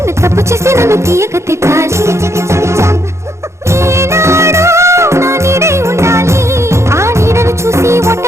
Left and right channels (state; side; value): late; left; 0.14 ms